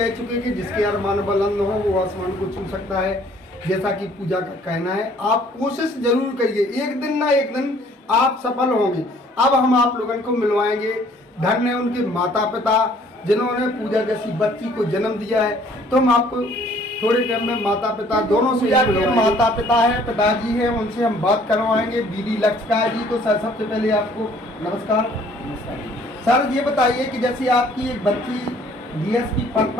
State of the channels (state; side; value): normal; both; correlation 0.58